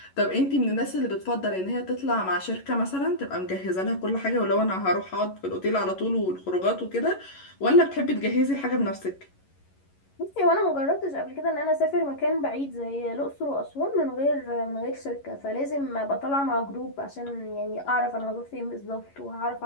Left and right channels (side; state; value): right; late; 11 ms